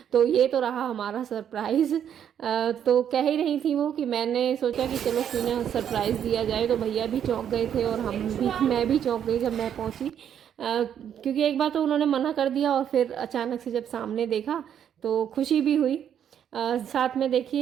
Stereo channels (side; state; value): left; quieter; 9.1 dB